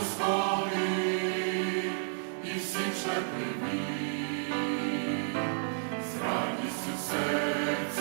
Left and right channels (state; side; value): silent; left; digital silence